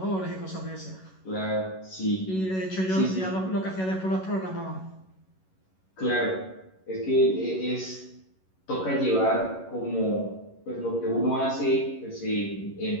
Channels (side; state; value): right; late; 11 ms